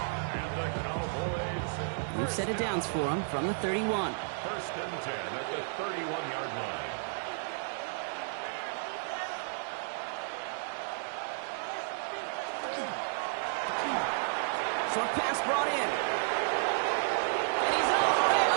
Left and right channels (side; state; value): left; silent; digital silence